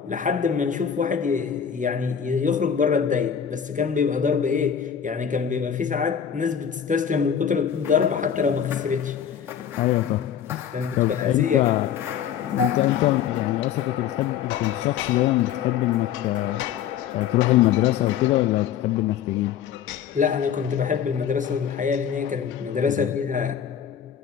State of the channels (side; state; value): right; quieter; 8.6 dB